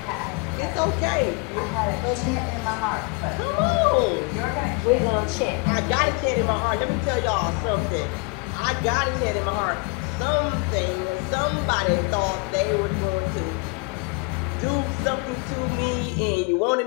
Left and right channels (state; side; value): quieter; right; 28.3 dB